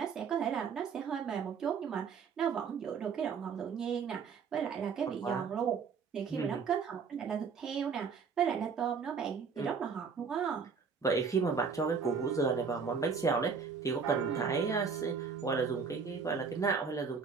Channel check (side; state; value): left; quieter; 5.8 dB